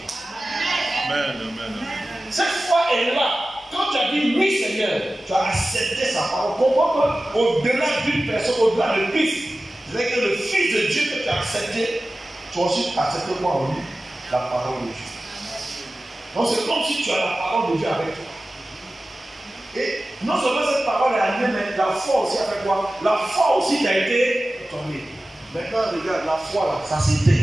Amen, amen. Cette foi est là. Quand tu as dit oui Seigneur, tu as accepté sa parole. Comprends qu'au-delà d'une personne, au-delà de Christ, c'est que le Fils de Dieu que tu as accepté, tu as aussi accepté quoi en lui? La parole de Dieu. Donc c'est comme si tu as la parole de Dieu avec toi. Et non seulement cette parole est animée, mais la foi aussi avec toi. La foi aussi qui a été tombée. Maintenant, regarde, la foi là, ça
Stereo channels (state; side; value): normal; both; correlation 0.95